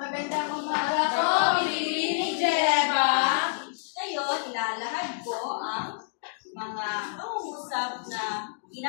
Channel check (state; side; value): silent; right; digital silence